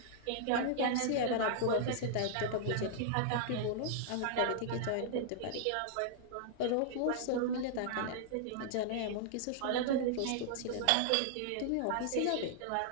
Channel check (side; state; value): both; different; correlation -0.01